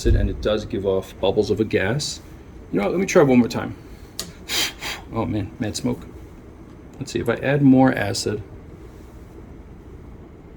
and it does give off bubbles of a gas. You know what, let me try one more time. Oh man, mad smoke. Let's see if I add more acid.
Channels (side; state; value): both; identical; correlation 1.00